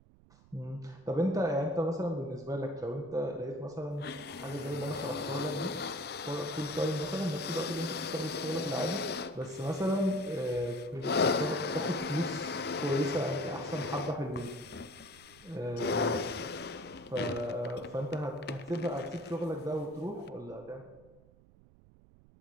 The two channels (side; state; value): right; noise; rumble, 25 dB below the sound